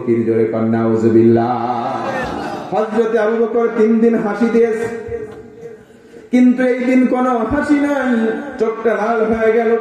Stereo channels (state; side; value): identical; both; correlation 1.00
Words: জোরে কর নাউযুবিল্লাহ। হযরতে আবু বকর 3 দিন হাসি দিয়েছে, কিন্তু এই দিন কোন হাসি নাই। চোখটা লাল হয়ে গেল।